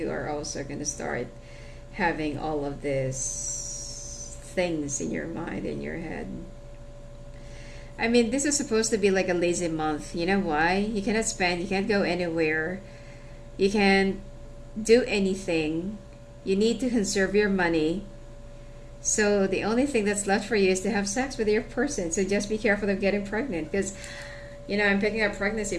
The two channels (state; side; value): identical; both; correlation 1.00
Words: are also going to start having all of these things in your mind, in your head. I mean, this is supposed to be like a lazy month. You know why? You cannot spend, you can't go anywhere, you can't do anything. You need to conserve your money. So the only thing that's left for you is to have sex with your person. So just be careful of getting pregnant, because, I'm picking up pregnancy